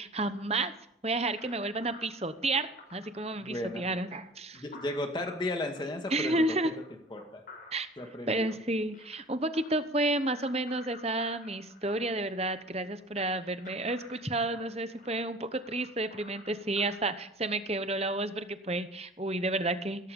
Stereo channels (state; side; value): normal; both; correlation 0.44